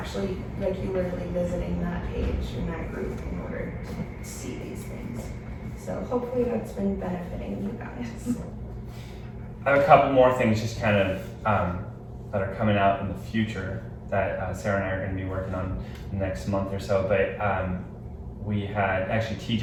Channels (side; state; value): both; identical; correlation 1.00